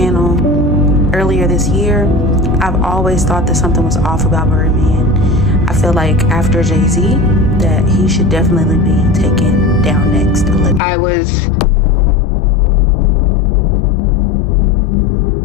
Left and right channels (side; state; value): right; drops out; at 10.8 s